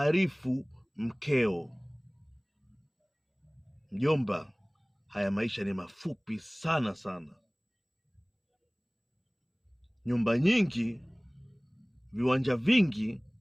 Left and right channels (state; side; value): identical; both; correlation 1.00